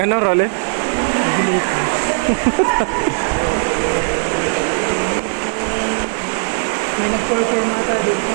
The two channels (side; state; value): left; silent; digital silence